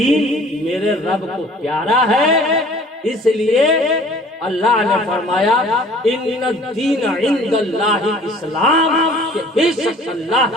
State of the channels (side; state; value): both; normal; correlation 0.50